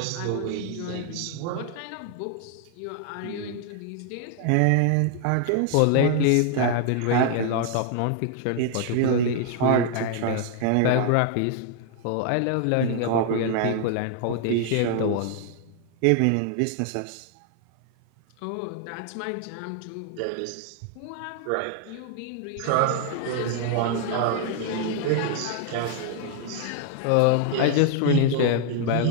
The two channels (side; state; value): both; different; correlation 0.00